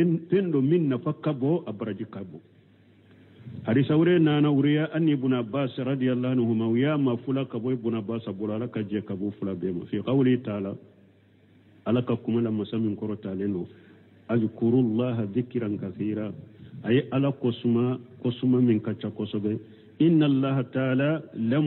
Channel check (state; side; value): identical; both; correlation 1.00